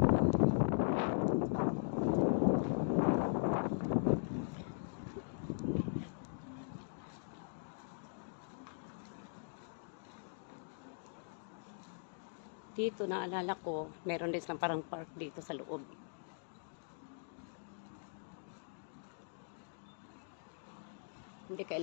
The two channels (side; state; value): right; silent; digital silence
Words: Dito, naalala ko, meron din silang parang park dito sa loob. Hindi